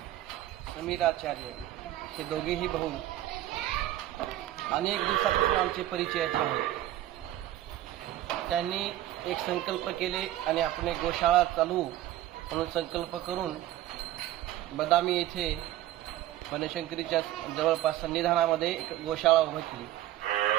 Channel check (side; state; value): left; quieter; 14.2 dB